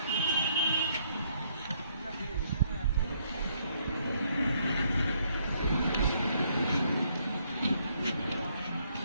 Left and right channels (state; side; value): inverted; both; correlation -0.70